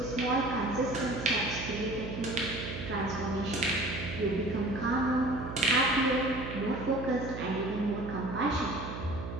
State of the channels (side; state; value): right; noise; hum, 7 dB below the sound